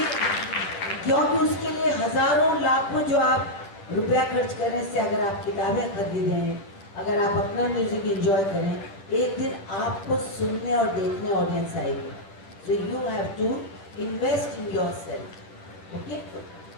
क्योंकि उसके लिए हजारों लाखों जो आप रुपया खर्च करने से अगर आप किताबें खरीदें, अगर आप अपना म्यूजिक एंजॉय करें, एक दिन आपको सुनने और देखने ऑडियंस आएगी। So you have to invest in yourself. Okay.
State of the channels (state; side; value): late; right; 9.9 ms